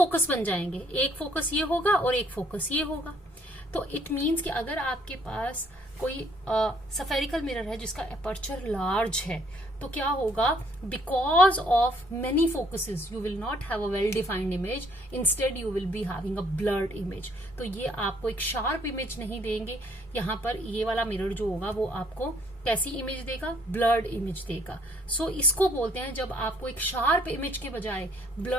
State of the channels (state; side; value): normal; both; correlation 0.64